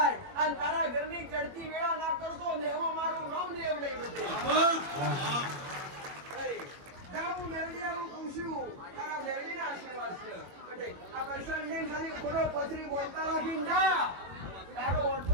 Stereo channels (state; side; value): late; left; 21 ms